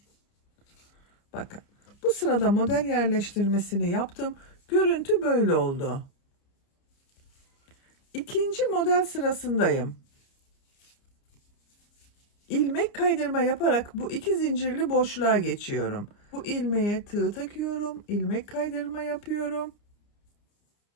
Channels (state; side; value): late; right; 30 ms